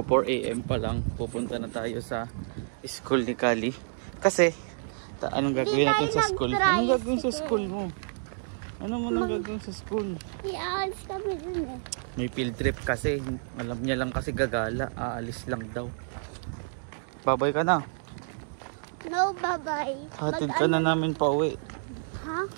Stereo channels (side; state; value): left; silent; digital silence